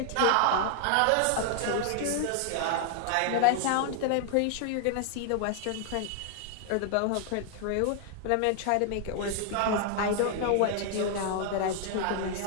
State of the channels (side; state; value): both; different; correlation 0.00